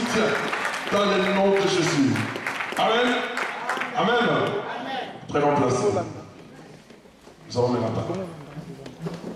dans le nom de Jésus. Amen. Amen. Amen. Prenons place. Nous allons mettre la parole.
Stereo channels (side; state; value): both; identical; correlation 1.00